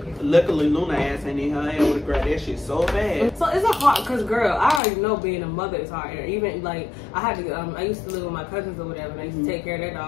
Luckily, Luna ass ain't in her hand with grab that shit so bad. So it's a hard, cause girl, I already know being a mother is hard. Even like I had to, I used to live with my cousins or whatever, and I used to take care of their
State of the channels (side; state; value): right; drops out; at 4.8 s